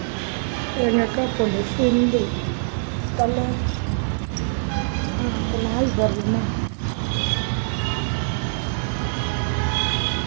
எங்கள் அக்கா பொண்ணு சிந்து தலை அந்த நாய் வருதுமா.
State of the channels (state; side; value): silent; left; digital silence